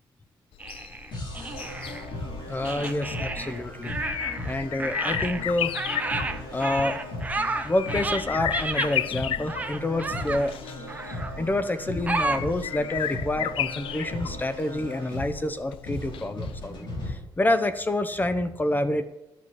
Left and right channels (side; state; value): both; normal; correlation 0.65